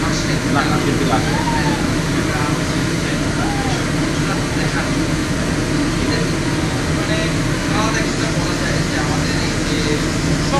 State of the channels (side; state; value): both; identical; correlation 1.00